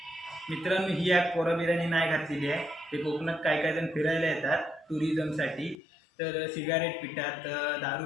मित्रांनो ही ॲप पोराबिरांनी नाही घातलेली आहे. ते कोकणात काय काय जण फिरायला येतात टुरिझमसाठी. तर सिगारेट पितात, दारू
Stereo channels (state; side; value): drops out; right; at 5.8 s